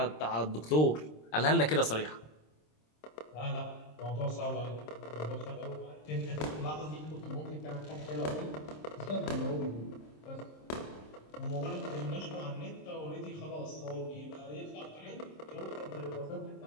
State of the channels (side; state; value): right; late; 26 ms